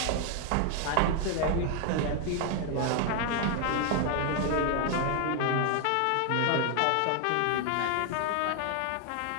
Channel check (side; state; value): both; different; correlation 0.00